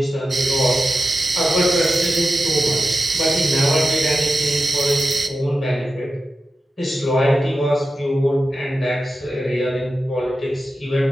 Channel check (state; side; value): normal; both; correlation 0.91